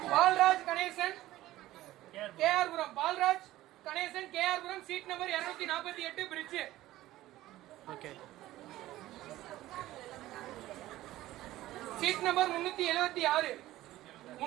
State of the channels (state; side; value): quieter; left; 15.7 dB